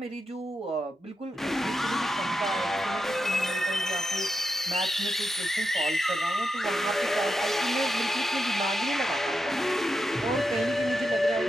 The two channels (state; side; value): normal; both; correlation 0.86